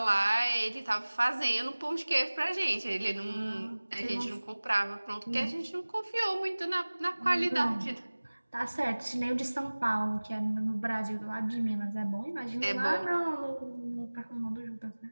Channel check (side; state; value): both; inverted; correlation -1.00